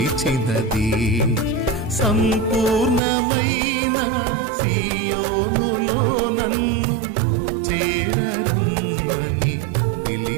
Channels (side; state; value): left; drops out; at 3.0 s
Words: సంపూర్ణమైన సియోనులో నన్ను చేరరమ్మని